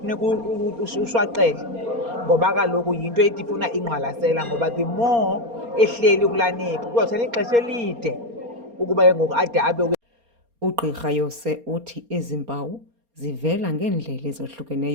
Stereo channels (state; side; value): late; left; 4.3 ms